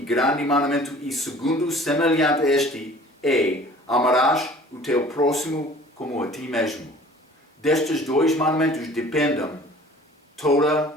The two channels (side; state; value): both; normal; correlation 0.48